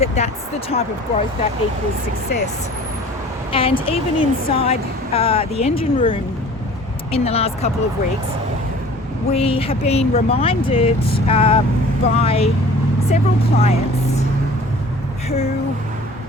that's the type of growth that equals success. And even inside the engine room in the last couple of weeks, we have been reminded by several clients who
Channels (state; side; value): normal; both; correlation 0.46